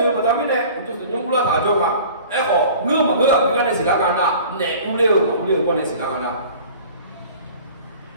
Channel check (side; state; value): both; inverted; correlation -0.44